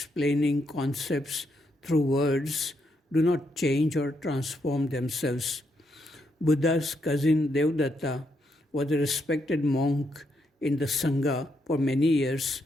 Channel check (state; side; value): normal; both; correlation 0.79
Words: concepts through words do not change or transform themselves. Buddha's cousin Devdatta was a respected monk in the Sangha for many years,